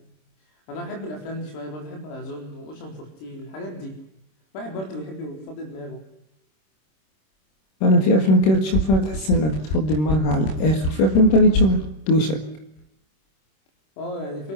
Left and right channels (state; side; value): late; right; 26 ms